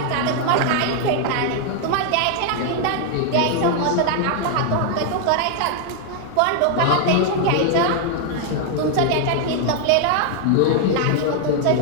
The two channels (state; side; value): different; both; correlation 0.00